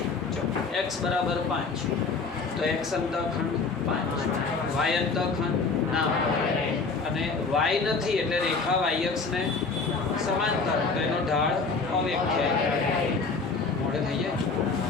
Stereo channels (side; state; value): right; quieter; 4.4 dB